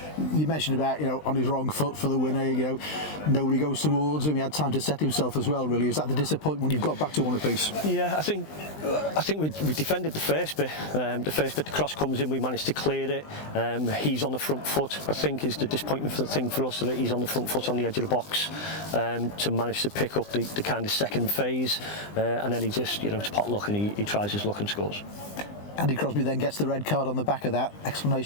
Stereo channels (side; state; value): right; late; 20 ms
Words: You mentioned about, you know, on his wrong foot for the winner, you know, nobody goes towards him, he had time to set himself as well, really. Is that the disappointment when you've got back to one apiece? Yeah, I think we defended the first bit. The first bit, the cross comes in, we managed to clear it. He's on the front foot, I think, is the disappointment thing for us, that he's on the front foot on the edge of the box, to manage to pick up the kind of second phase, and then he just, you know, it's pot luck, and he tries his luck and scores. Andy Crosby then gets the red card on the back of that.